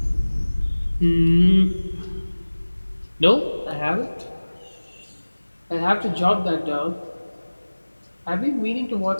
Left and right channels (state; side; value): inverted; both; correlation -1.00